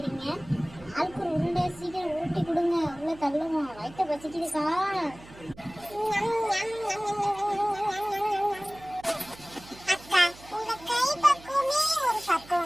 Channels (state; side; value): noise; right; hum, 20 dB below the sound